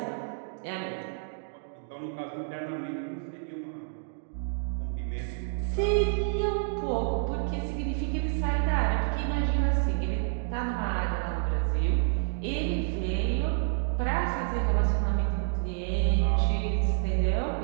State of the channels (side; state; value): left; silent; digital silence